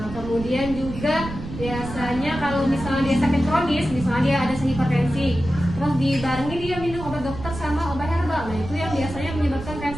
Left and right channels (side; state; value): right; noise; rumble, 10 dB below the sound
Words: kemudian juga biasanya kalau misalnya dia sakit kronis, misalnya dia ada hipertensi, terus dibarengi dia minum obat dokter sama obat herbal. Nah itu yang biasanya menyebabkan